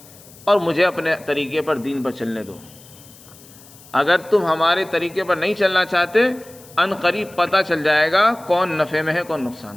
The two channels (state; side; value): noise; left; hiss, 22 dB below the sound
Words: اور مجھے اپنے طریقے پر دین پر چلنے دو۔ اگر تم ہمارے طریقے پر نہیں چلنا چاہتے، ان قریب پتہ چل جائے گا کون نفع میں ہے کون نقصان